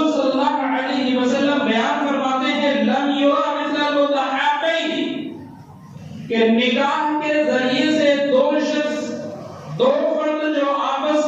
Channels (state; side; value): identical; both; correlation 1.00